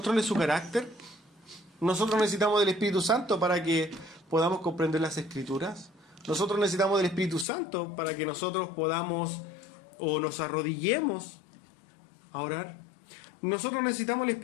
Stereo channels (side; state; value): right; drops out; at 7.5 s